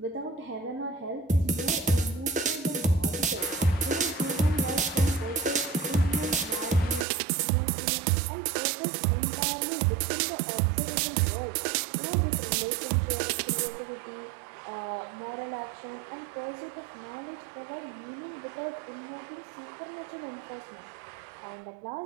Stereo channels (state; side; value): drops out; left; at 7.1 s